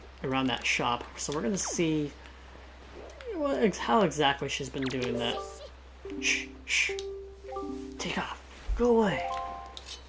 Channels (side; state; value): both; identical; correlation 1.00